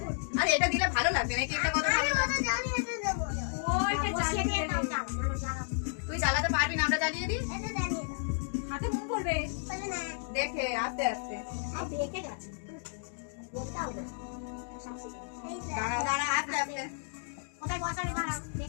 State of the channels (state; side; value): silent; right; digital silence